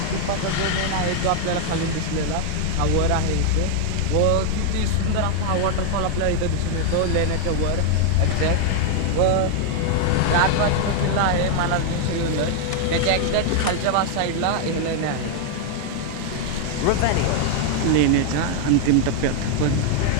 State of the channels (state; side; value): different; both; correlation 0.00